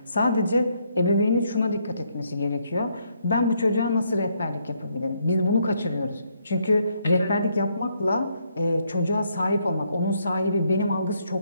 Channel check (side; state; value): both; inverted; correlation -0.73